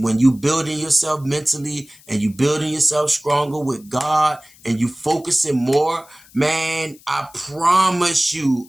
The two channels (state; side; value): noise; left; hiss, 26 dB below the sound